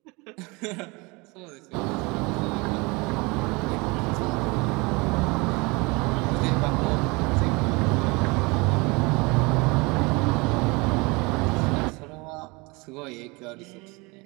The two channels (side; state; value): left; quieter; 26.3 dB